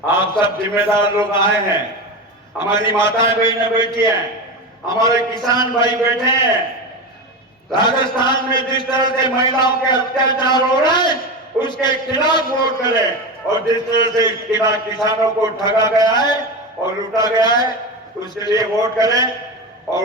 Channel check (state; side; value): normal; both; correlation 0.21